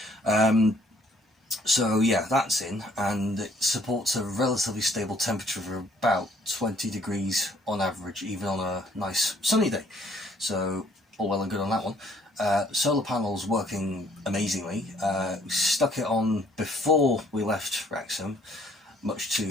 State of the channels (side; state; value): both; normal; correlation 0.62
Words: So yeah, that's in, and it supports a relatively stable temperature of about 20 degrees on average, even on a nice sunny day. So all well and good on that one. Solar panels working amazingly. We stuck it on before we left Wrexham, much to